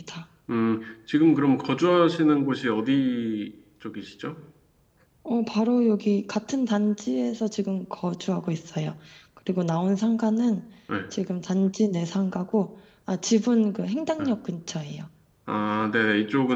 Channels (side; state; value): both; identical; correlation 1.00